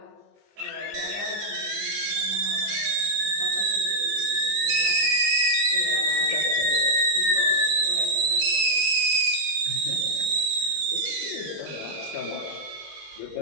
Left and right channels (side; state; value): left; late; 20 ms